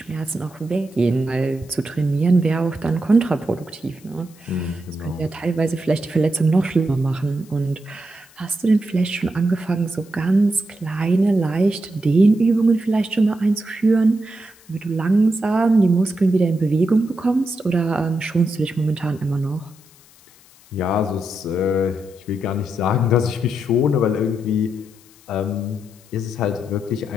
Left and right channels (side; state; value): left; noise; hiss, 27 dB below the sound